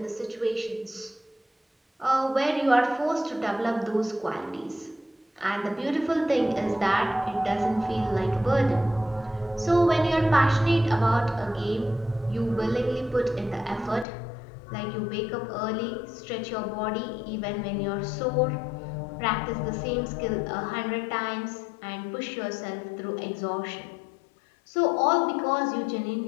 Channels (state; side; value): drops out; right; at 14.1 s